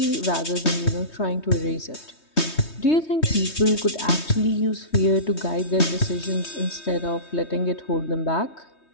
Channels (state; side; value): late; right; 3.2 ms